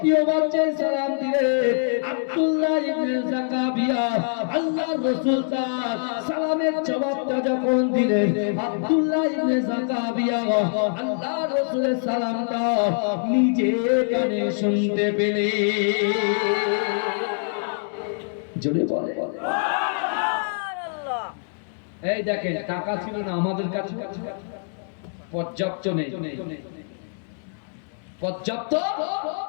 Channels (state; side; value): silent; right; 62 dB below the other